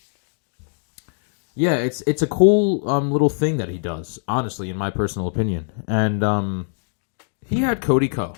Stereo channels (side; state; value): right; silent; digital silence